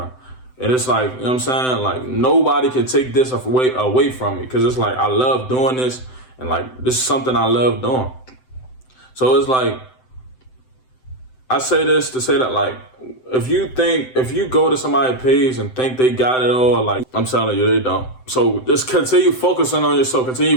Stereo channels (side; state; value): right; late; 7.8 ms